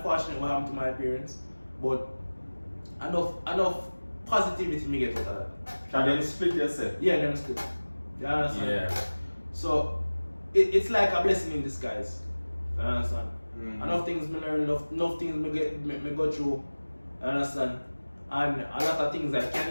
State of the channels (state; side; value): inverted; both; correlation -1.00